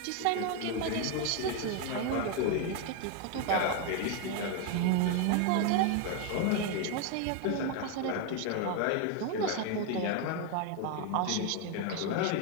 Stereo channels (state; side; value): different; both; correlation 0.01